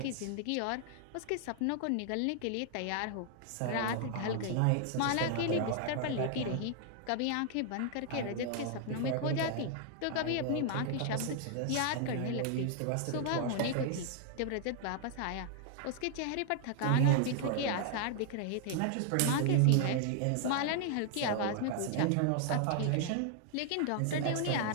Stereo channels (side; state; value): both; different; correlation 0.00